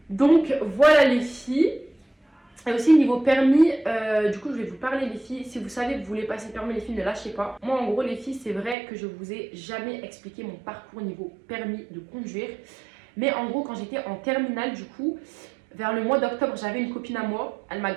Donc voilà les filles. Et aussi niveau permis, du coup je vais vous parler les filles. Si vous savez que vous voulez passer le permis les filles, ne lâchez pas. Moi en gros les filles, c'est vrai que je vous ai jamais expliqué mon parcours niveau permis de conduire. Mais en gros quand j'étais en terminale du coup, vers le mois d'octobre, j'avais une copine à moi. Elle m'a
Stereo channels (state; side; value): drops out; left; at 8.8 s